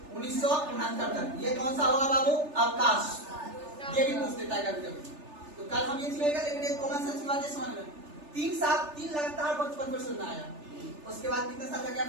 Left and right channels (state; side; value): late; left; 3.3 ms